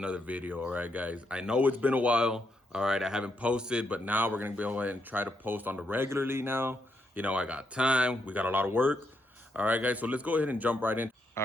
video. All right, guys, I know it's been a while. All right, I haven't posted, but now we're gonna go ahead and try to post on the regularly now. You know, I got time, we got a lot of work. All right, guys, so let's go ahead and jump right in.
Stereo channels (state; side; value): normal; both; correlation 0.79